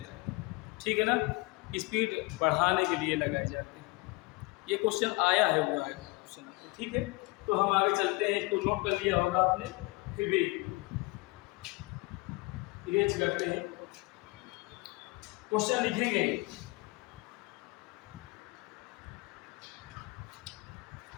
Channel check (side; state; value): right; quieter; 24.1 dB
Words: ठीक है ना, स्पीड बढ़ाने के लिए लगाए जाते हैं। ये क्वेश्चन आया है, हुआ है क्वेश्चन, ठीक है। तो हम आगे चलते हैं, इसको नोट कर लिया होगा आपने, फिर भी इरेज करते हैं, क्वेश्चन लिखेंगे।